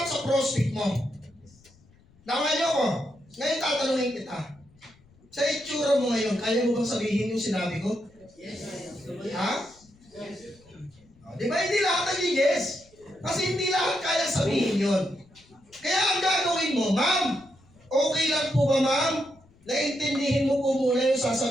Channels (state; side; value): noise; left; rumble, 29 dB below the sound